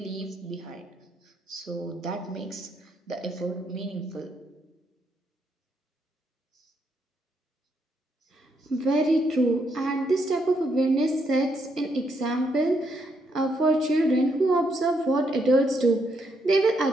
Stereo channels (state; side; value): normal; both; correlation 0.76